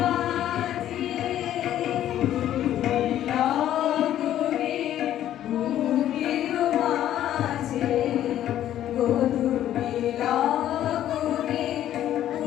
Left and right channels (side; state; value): right; quieter; 11.9 dB